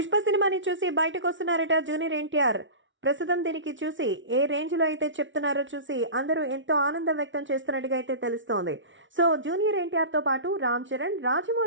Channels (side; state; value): left; late; 0.56 ms